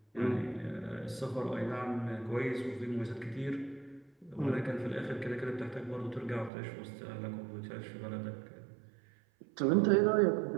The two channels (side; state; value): left; drops out; at 6.5 s